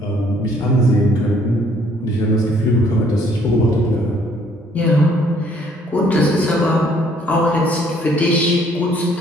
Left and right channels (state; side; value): normal; both; correlation 0.63